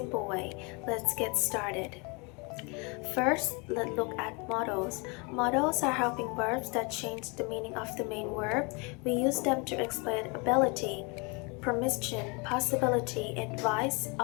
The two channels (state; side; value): quieter; right; 30.9 dB